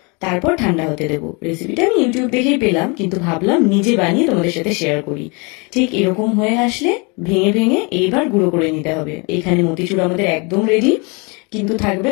তারপর ঠান্ডা হতে দেবো। রেসিপিটা আমি ইউটিউব দেখেই পেলাম, কিন্তু ভাবলাম নিজে বানিয়ে তোমাদের সাথে শেয়ার করি। ঠিক এরকম হয়ে আসলে ভেঙে ভেঙে এইবার গুঁড়ো করে নিতে হবে। এখানে মতিচুর আমাদের একদম রেডি, কিন্তু থাকবে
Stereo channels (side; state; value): right; quieter; 30.7 dB